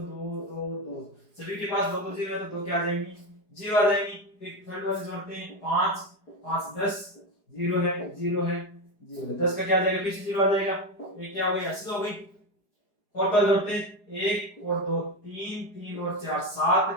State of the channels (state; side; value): late; right; 4.8 ms